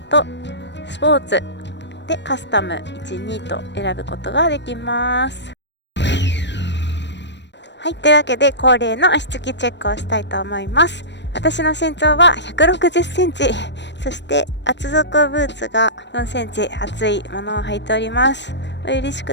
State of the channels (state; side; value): late; right; 0.51 ms